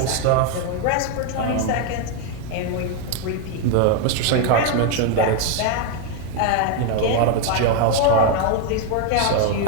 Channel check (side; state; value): both; different; correlation 0.01